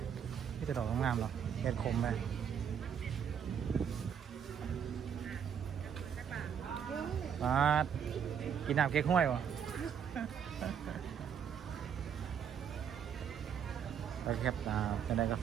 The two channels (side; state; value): left; quieter; 7.9 dB